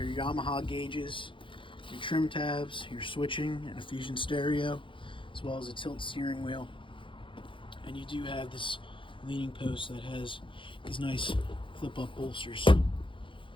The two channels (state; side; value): late; right; 0.25 ms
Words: Yamaha gauges, your trim tabs, your switching, and a Fusion stereo, as well as a tilt steering wheel. And you do have this leaning post that has these nice flip-up bolsters.